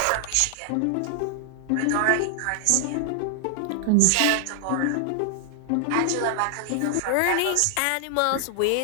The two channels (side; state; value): both; different; correlation 0.00